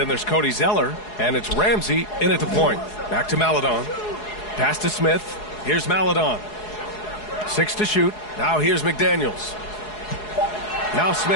there's Cody Zeller. And it's Ramsey in at the point. Back to Maledon. Pass to Smith. Here's Maledon. 6 to shoot. Now here's McDaniels. Now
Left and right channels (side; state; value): right; late; 4.8 ms